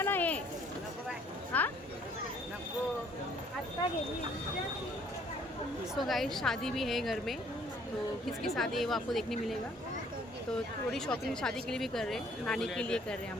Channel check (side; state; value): both; normal; correlation 0.61